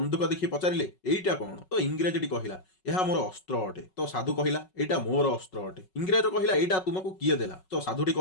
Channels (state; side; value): late; right; 5.4 ms